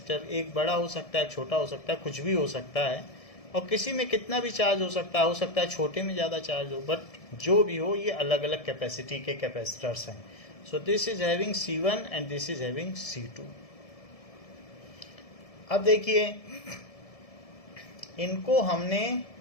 एक बड़ा हो सकता है, छोटा हो सकता है, कुछ भी हो सकता है, और किसी में कितना भी चार्ज हो सकता है छोटे में ज़्यादा चार्ज हो, बट जो भी हो ये अलग अलग कैपेसिटी के कैपेसिटर्स हैं. सो this is having C1 and this is having C2. अब देखिए इनको हमने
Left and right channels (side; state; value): right; late; 1.7 ms